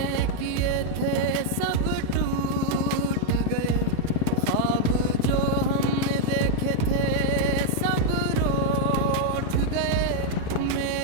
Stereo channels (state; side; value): different; both; correlation -0.01